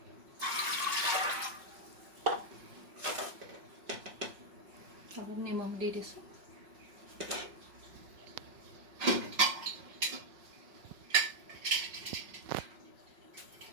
অলপ নিমখ দি দিছোঁ।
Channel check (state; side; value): late; left; 5.4 ms